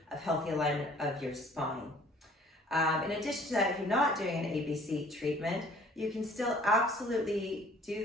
alignment of your spine. In addition to that, if you're not doing an ABC treatment, you can still absolutely do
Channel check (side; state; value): both; normal; correlation 0.54